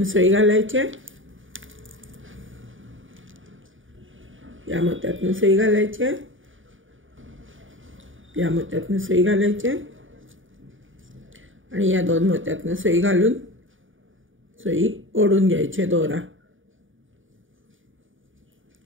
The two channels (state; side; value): late; left; 0.57 ms